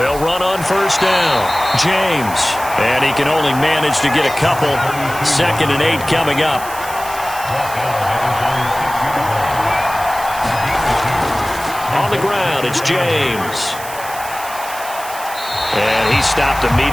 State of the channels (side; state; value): right; noise; hiss, 13 dB below the sound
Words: run on 1st down. James. And he can only manage to get a couple. 2nd and 8 coming up. On the ground, it's James. And he stopped